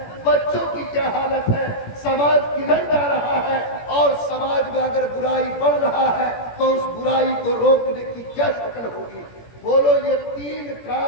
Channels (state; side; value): late; right; 17 ms